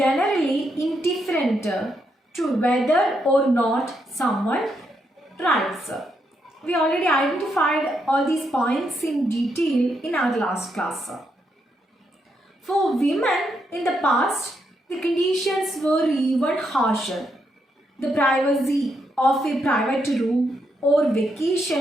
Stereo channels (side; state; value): both; normal; correlation 0.79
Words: indifferent to whether or not someone writes. We already identified all these points in detail in our last class. For women in the past, the conditions were even harsher. The privacy of a private room or